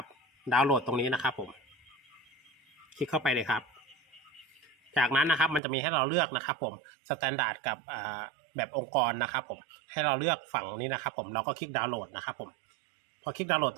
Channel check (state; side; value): drops out; left; at 5.6 s